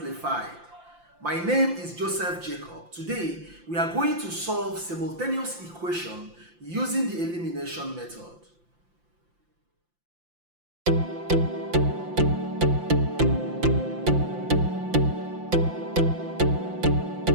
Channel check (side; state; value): left; late; 5.8 ms